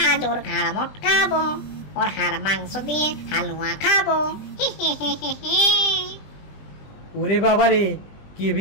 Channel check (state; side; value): late; right; 20 ms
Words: আজ ওর ঘাড় মটকাবো, ওর হাড় মাংস দিয়ে হালুয়া খাবো। ওরে বাবারে, কি